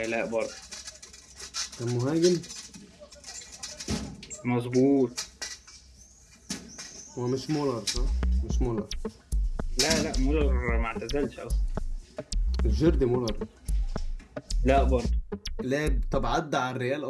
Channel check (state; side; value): identical; both; correlation 1.00